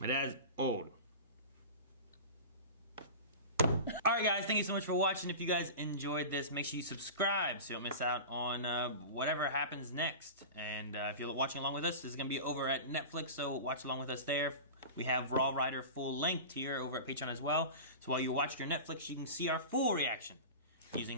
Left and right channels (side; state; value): both; inverted; correlation -0.31